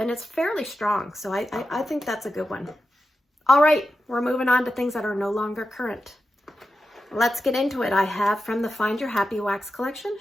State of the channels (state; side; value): normal; both; correlation 0.90